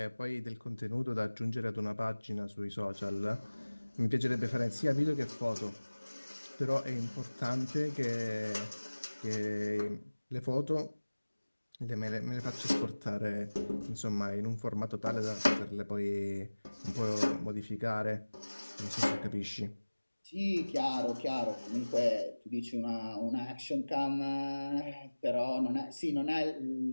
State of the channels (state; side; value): inverted; both; correlation -1.00